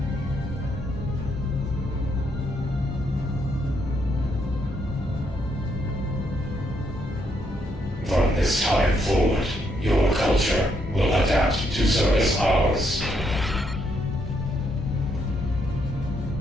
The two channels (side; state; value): both; normal; correlation 0.75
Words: From this time forward, your culture will adapt to service ours.